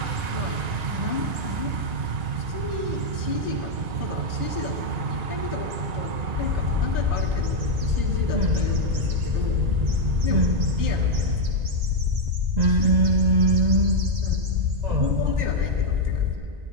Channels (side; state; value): left; late; 1.9 ms